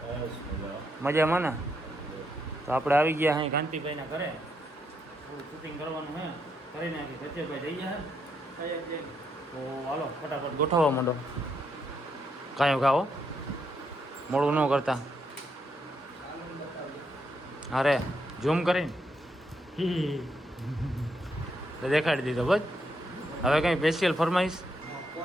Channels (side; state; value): both; normal; correlation 0.78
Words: મજામાં ને? તો આપણે આવી ગયા અહીં કાંતિભાઈના ઘરે. થોડું શૂટિંગ કરવાનું છે, કરી નાખી. કચ્છેભાઈ જઈ ગયા છે. તો હાલો ફટાફટ ગોઠવવા માંડો. કાંઈ ખાઓ મોડું ન કરતા. અરે ઝૂમ કરીને દેખાડી દીધો બસ. હવે કંઈ સ્પેશિયલ ફરમાઈશ?